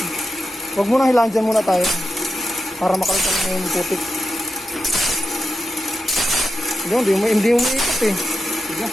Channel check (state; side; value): normal; both; correlation 0.90